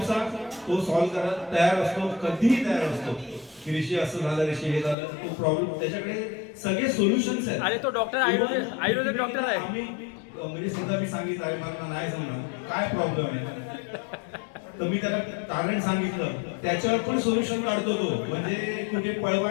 तो सॉल्व्ह करायला तयार असतो, कधीही तयार असतो. की ऋषी असं झालं, ऋषी हे झालं, तो प्रॉब्लेम त्याच्याकडे सगळे सोल्युशन्स आहेत. अरे तो डॉक्टर आयुर्वेदिक डॉक्टर आहे. आम्ही म्हणजे सुद्धा मी सांगितलं आहे मला नाही समजणार काय प्रॉब्लेम आहे, तर मी त्याला कारण सांगितलं, त्याच्यावर पण सोल्युशन काढतो तो. म्हणजे कुठे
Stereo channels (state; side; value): drops out; right; at 5.0 s